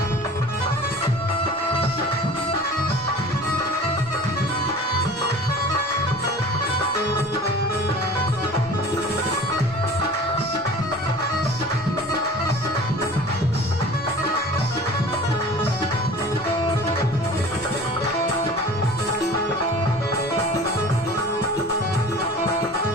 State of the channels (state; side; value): normal; both; correlation 0.42